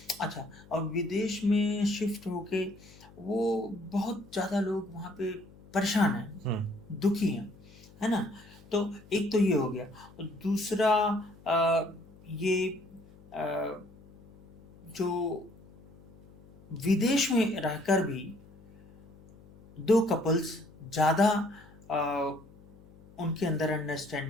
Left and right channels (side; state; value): left; noise; hum, 23 dB below the sound